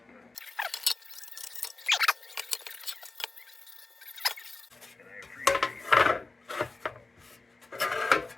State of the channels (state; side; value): quieter; right; 3.4 dB